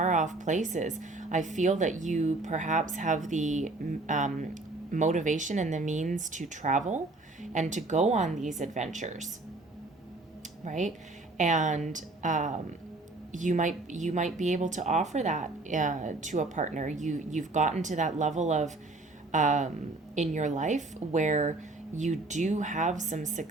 off places, I feel that you perhaps have the motivation and the means to travel and to go on these adventures, right? And you might be able to offer that to a partner. You've gotten to that level of in your life where you do have some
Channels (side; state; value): left; quieter; 3.1 dB